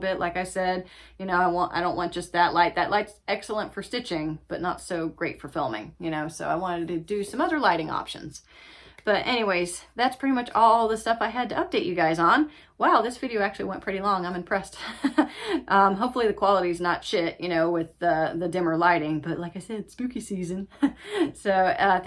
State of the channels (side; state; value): both; identical; correlation 1.00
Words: Like I said, you know, I don't want just that light. That light's excellent for stitching, but not so great for filming, you know, so I wanted to do some other lighting options. But anyways, that's pretty much all the stuff I had to update you guys on. Wow, this video actually went pretty long. I'm impressed. Hopefully the quality's not shit, you know, with the dimmer lighting. But like I said, spooky season. So